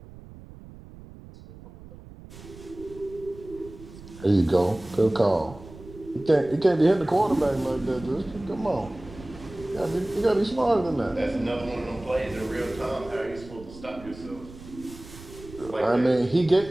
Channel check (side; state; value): right; noise; rumble, 17 dB below the sound